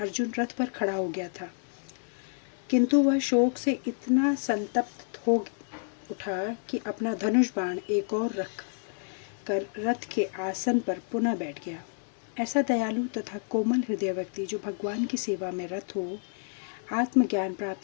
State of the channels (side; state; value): right; silent; 58 dB below the other